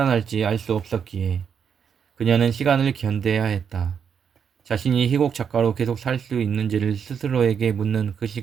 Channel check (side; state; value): left; quieter; 7.3 dB